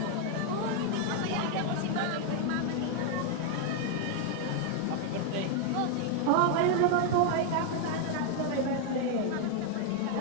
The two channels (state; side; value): different; both; correlation 0.00